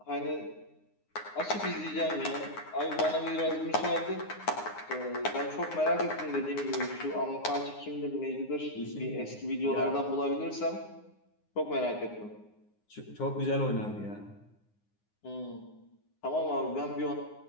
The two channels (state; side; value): late; right; 9.6 ms